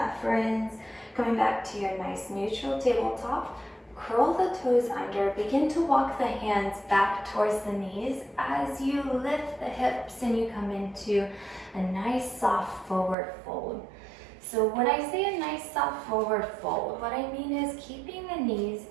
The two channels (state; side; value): drops out; left; at 13.2 s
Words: friends. Coming back to your nice neutral tabletop. Curl the toes under, begin to walk the hands back towards the knees as you lift the hips and you come into a nice soft forward fold. So when I say a nice soft forward fold, what I mean is keeping the knees